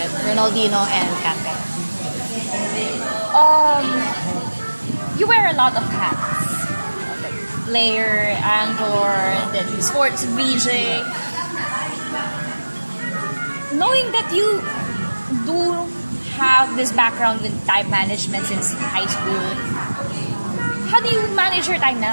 Ronaldinho and Kante. You wear a lot of hats. Like player, anchor, then sports VJ. Knowing that you do have this background with time management since high school, how do you manage your time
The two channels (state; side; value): inverted; both; correlation -1.00